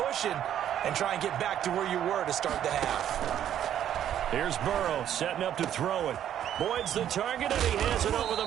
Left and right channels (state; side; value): quieter; left; 10.5 dB